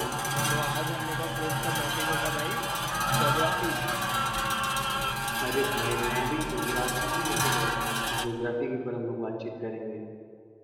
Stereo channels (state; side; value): identical; both; correlation 1.00